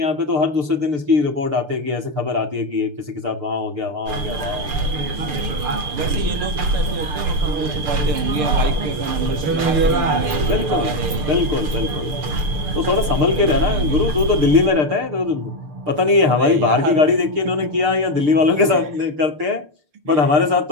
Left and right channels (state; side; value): late; left; 6.7 ms